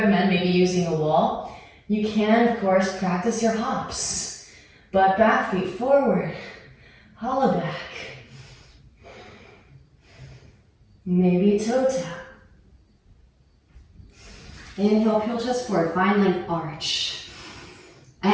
maybe using a wall, you can, of course, practice your hops. Butt back, feet forward, hollow back. Maybe toe tap. Inhale, peel chest forward, find length arch.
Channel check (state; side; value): identical; both; correlation 1.00